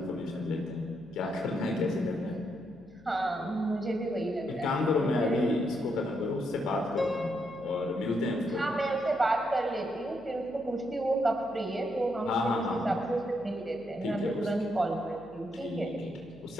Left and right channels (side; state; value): left; noise; hum, 25 dB below the sound